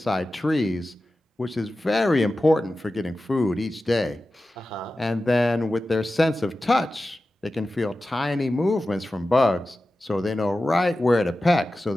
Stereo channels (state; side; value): normal; both; correlation 0.94